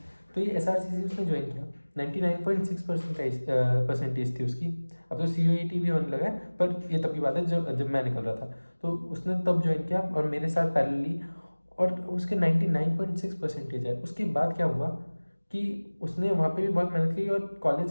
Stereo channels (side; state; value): both; inverted; correlation -1.00